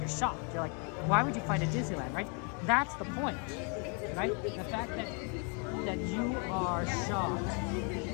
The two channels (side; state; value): right; quieter; 37.2 dB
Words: shocked. You're like, why would you fight at Disneyland, right? That's the point, right? The fact that you are shocked,